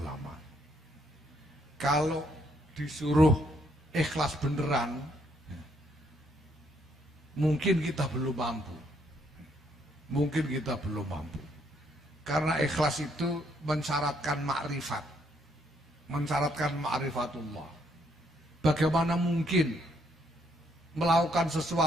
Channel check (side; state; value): both; normal; correlation 0.71